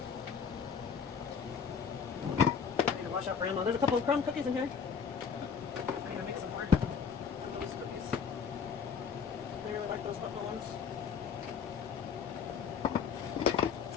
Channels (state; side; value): quieter; right; 6.4 dB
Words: I need to wash out grandma. There's a couple of crumb cookies in here. I need to make some more of those cookies. I really like those buffalo ones.